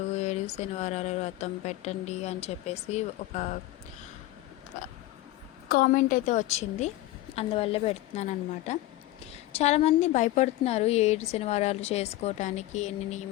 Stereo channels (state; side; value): quieter; right; 16.5 dB